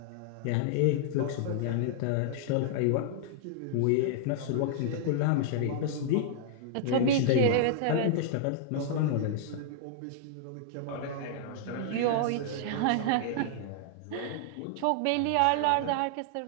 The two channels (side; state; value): both; different; correlation -0.01